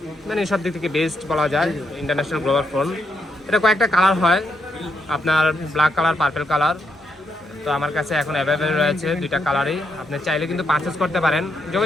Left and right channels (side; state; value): both; normal; correlation 0.78